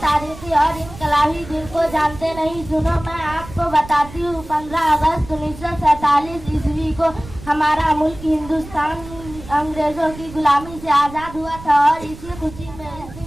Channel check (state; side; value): noise; right; rumble, 15 dB below the sound